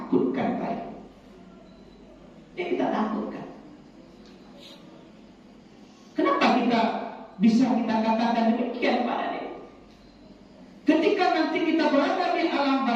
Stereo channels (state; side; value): identical; both; correlation 1.00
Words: baik. Yang kita takutkan. Kenapa kita bisa kita katakan demikian, Pak Ade? Ketika nanti kita berada di alam